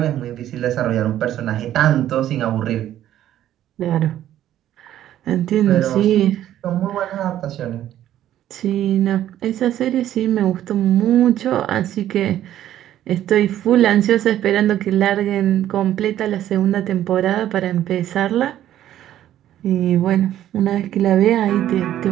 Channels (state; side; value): quieter; left; 12.1 dB